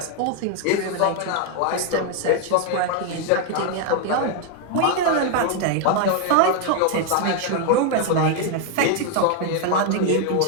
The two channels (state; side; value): different; both; correlation 0.00